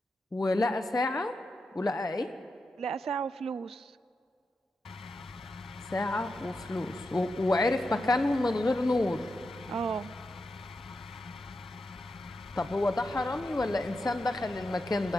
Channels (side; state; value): both; normal; correlation 0.87